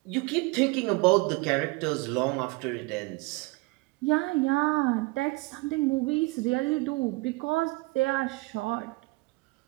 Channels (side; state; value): left; quieter; 24.9 dB